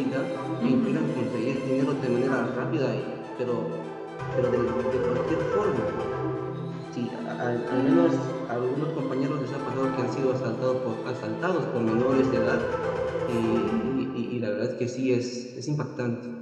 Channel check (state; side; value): identical; both; correlation 1.00